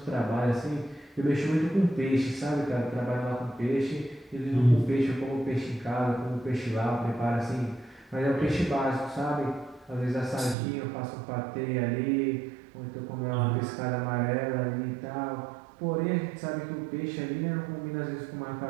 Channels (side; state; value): left; drops out; at 10.6 s